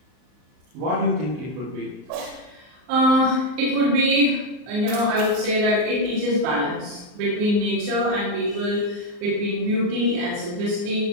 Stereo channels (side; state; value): left; late; 39 ms